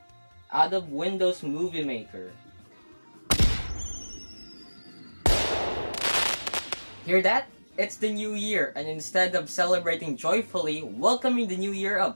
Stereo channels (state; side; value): inverted; both; correlation -1.00